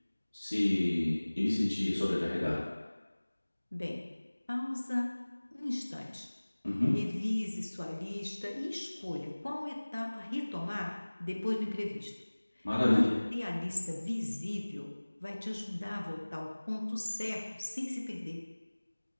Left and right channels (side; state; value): both; inverted; correlation -1.00